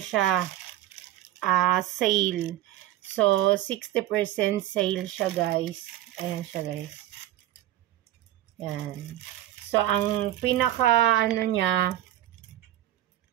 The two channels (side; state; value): left; quieter; 13.5 dB